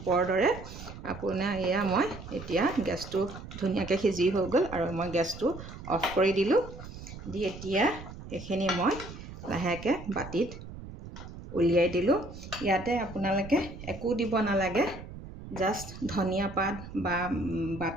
দৰে। আপোনাৰ এয়া মই এতিয়া গেছটো ধুনীয়াকৈ সিজি হৈ গ'ল আৰু মই গেছটো অফ কৰি দিলোঁ। দি এতিয়া এইখিনি মই লাহেকৈ বাতিত উলিয়াই দিলোঁ। ইয়াতে আপোনালোকে একো দিব নালাগে, জাষ্ট ধনিয়া পাত বা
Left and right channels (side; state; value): right; noise; rumble, 13 dB below the sound